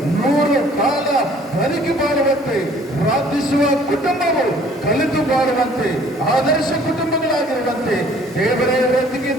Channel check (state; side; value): normal; both; correlation 0.56